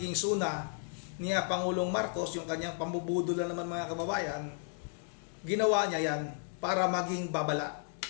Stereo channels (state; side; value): silent; right; 55 dB below the other